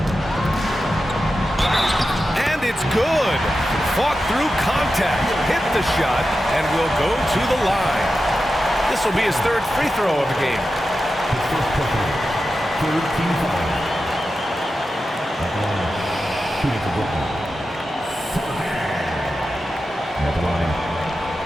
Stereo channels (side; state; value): both; normal; correlation 0.91